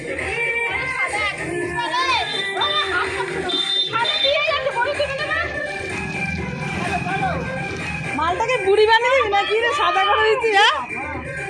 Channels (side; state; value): both; identical; correlation 1.00